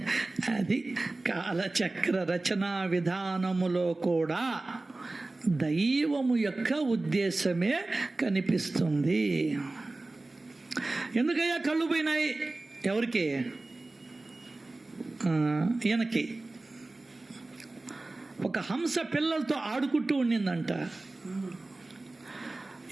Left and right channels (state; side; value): quieter; left; 3.1 dB